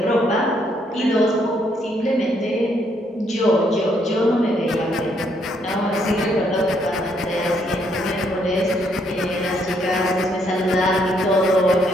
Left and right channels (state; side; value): normal; both; correlation 0.72